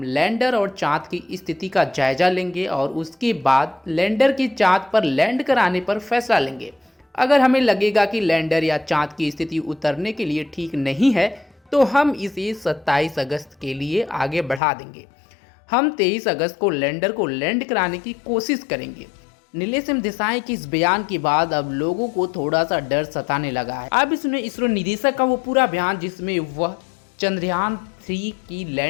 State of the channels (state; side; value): drops out; right; at 14.6 s